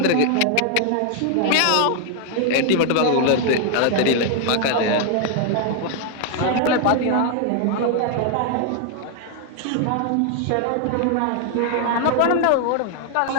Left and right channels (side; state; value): both; different; correlation 0.00